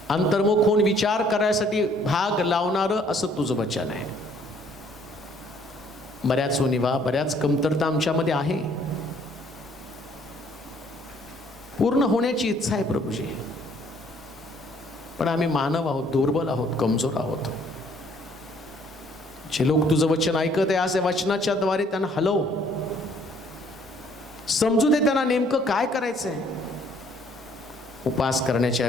अंतर्मुख होऊन विचार करायसाठी भाग लावणारं असं तुझं वचन आहे. बऱ्याच उणिवा, बऱ्याच कमतरता आमच्यामध्ये आहे. पूर्ण होण्याची इच्छा आहे प्रभूजी, पण आम्ही मानव आहोत, दुर्बल आहोत, कमजोर आहोत. जे लोक तुझं वचन ऐकत आहे आज या वचनाच्या द्वारे त्यांना हलव, समजू दे त्यांना नेमकं काय करायचंय. उपास करण्याच्या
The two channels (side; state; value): both; normal; correlation 0.61